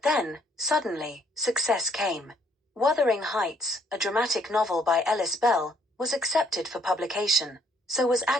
then, suddenly, success came. Wuthering Heights, a dramatic novel by Ellis Bell, was accepted for publication. So was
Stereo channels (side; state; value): both; normal; correlation 0.67